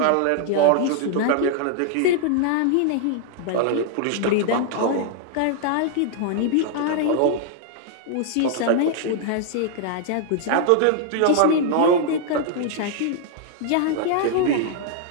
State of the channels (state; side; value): different; both; correlation 0.00